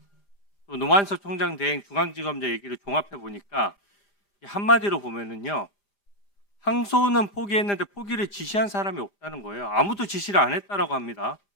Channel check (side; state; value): right; late; 5.2 ms